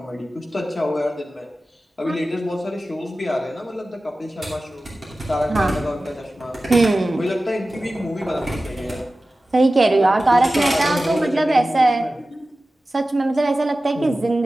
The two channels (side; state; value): both; normal; correlation 0.95